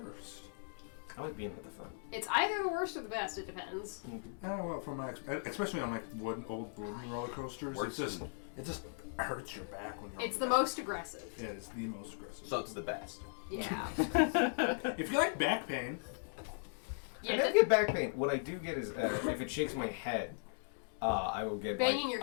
I like being at the front. It's either the worst or the best. It depends. Well, from my especially on like old wooden roller coasters, Worse it just hurts your back when you're. It's on the back. most aggressive. Yeah, it's the most aggressive. So it's the best. Yeah. If you like back pain, Yeah. I never get back pain. What I do get is if it shakes my head, I will get Banging like, your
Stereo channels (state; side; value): silent; right; digital silence